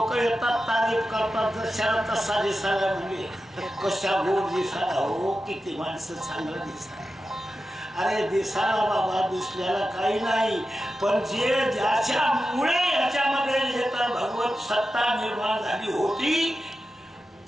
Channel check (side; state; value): both; normal; correlation 0.92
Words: येतात तारीफ करतात जशाला तसा दिसायला म्हणजे कशा गोड दिसायला हो किती माणसं चांगलं दिसायला. अरे दिसायला बाबा दिसल्याला काही नाही पण जे ज्याच्यामुळे याच्यामध्ये येतं भगवत सत्ता निर्माण झाली होती